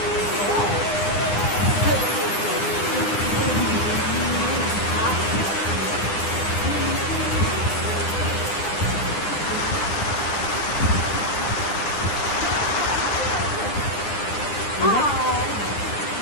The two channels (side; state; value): right; late; 9.8 ms